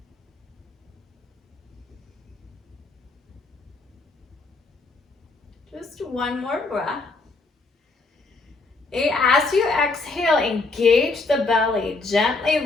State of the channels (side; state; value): right; quieter; 3.5 dB